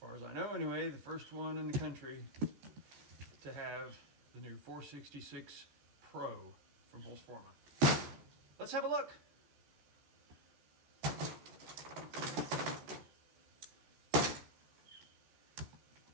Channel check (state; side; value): late; left; 14 ms